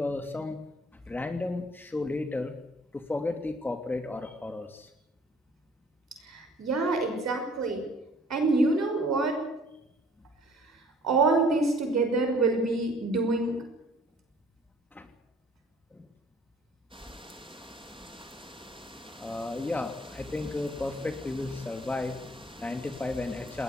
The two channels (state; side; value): normal; both; correlation 0.56